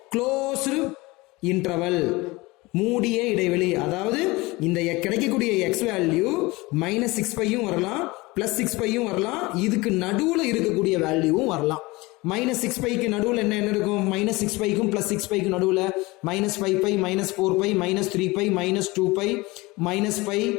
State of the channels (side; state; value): right; quieter; 22.5 dB